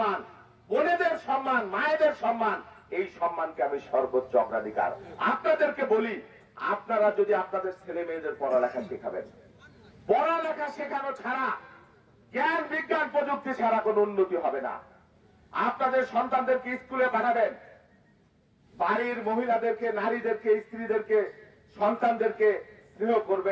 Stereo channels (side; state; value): both; identical; correlation 1.00